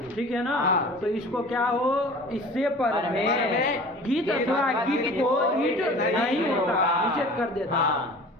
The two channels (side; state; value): both; normal; correlation 0.43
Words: ठीक है ना। हाँ। तो इसको क्या हो, इससे पर में गीत अथवा गीत को ईट नहीं होता, निषेध कर देता। हाँ।